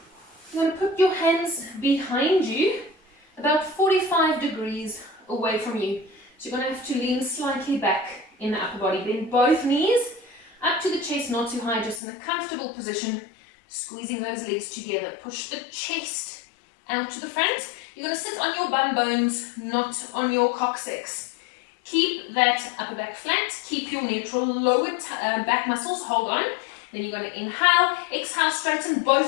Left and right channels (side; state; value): right; drops out; at 12.0 s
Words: You're going to put your hands behind you, about 45 degrees away from you. So you're going to have to lean slightly back in the upper body. Bend both knees up to the chest, not too high, just in a comfortable position. Squeezing those legs together. Push the chest out to the front. You're going to sit on your bum bones, not on your coccyx. Keep that upper back flat. Keep your neutral lower back muscles. Hold on. Then you're going to inhale. Exhale, straighten